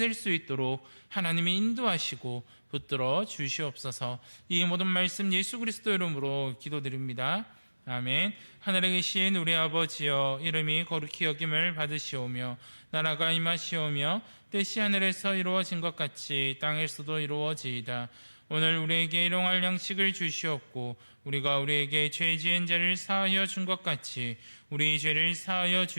수 있도록 하나님이 인도하시고 붙들어 주시옵소서. 이 모든 말씀 예수 그리스도 이름으로 기도드립니다. 아멘. 하늘에 계신 우리 아버지여, 이름이 거룩히 여김을 받으시오며 나라가 임하시오며 뜻이 하늘에서 이루어진 것 같이 땅에서도 이루어지이다. 오늘 우리에게 일용할 양식을 주시옵고 우리가 우리에게 죄 지은 자를 사하여 준 것 같이 우리 죄를 사하여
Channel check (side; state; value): both; inverted; correlation -1.00